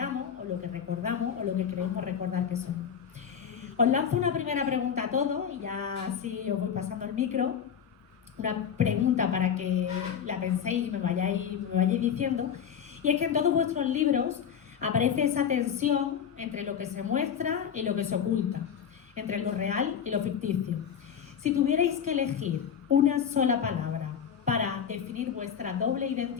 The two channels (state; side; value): quieter; right; 7.9 dB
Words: o lo que recordamos o lo que creemos recordar que somos. Os lanzo una primera pregunta a todos y ya así os voy pasando el micro. una pregunta para que la penséis y me vayáis diciendo, y es que en todos vuestros libros aparece esa tensión entre lo que se muestra y lo que se oculta, entre lo real y lo ficticio. Si tuvierais que elegir una sola palabra para definir vuestra doble